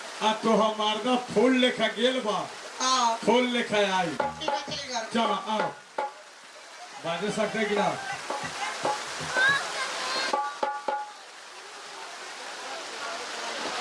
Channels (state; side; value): identical; both; correlation 1.00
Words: आ तो हमारा फूल लेखा गेल बा हाँ फूल लेखा आई। ठीक है चल घर चलो आओ बाजे सकते कि ना।